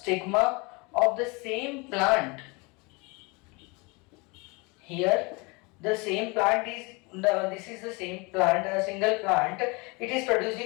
of the same plant. Here the same plant is this is the same plant, a single plant. It is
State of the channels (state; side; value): quieter; right; 27.9 dB